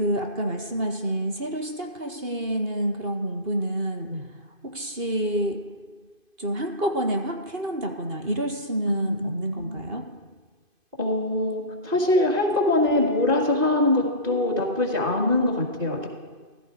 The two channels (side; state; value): left; late; 2.5 ms